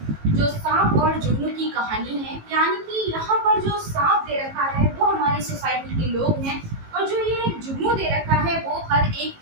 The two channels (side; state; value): left; late; 18 ms